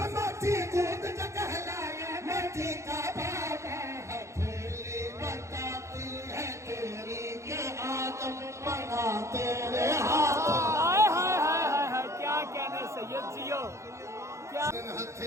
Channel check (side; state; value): left; late; 0.14 ms